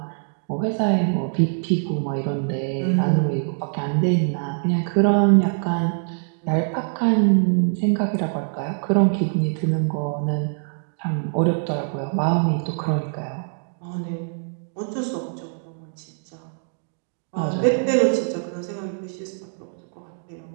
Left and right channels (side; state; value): left; silent; digital silence